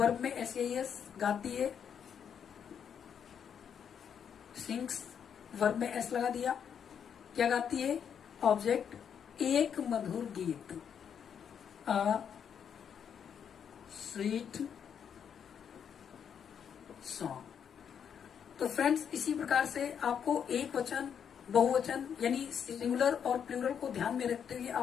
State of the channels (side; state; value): right; quieter; 7.9 dB